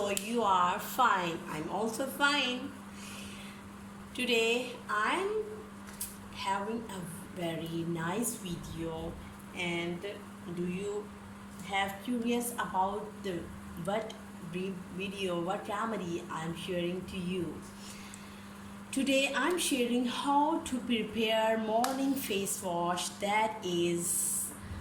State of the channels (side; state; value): both; identical; correlation 1.00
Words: You are fine. I'm also fine. Today I'm having a very nice video, and do you have curious about the what what remedy I'm sharing to you? Today I'm sharing how to prepare morning face wash that is